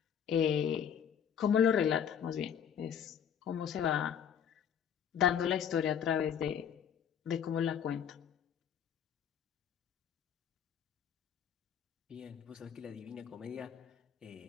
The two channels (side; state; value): right; quieter; 8.4 dB